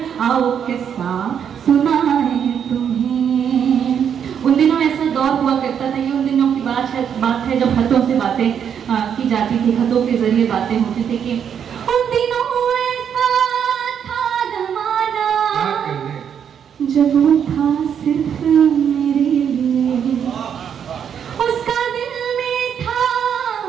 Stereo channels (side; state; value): left; quieter; 8.2 dB